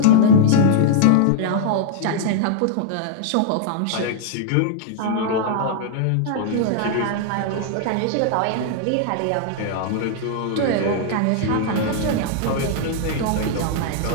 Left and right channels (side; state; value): both; different; correlation -0.01